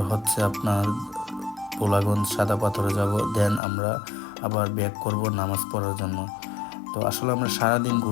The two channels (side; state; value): right; drops out; at 3.6 s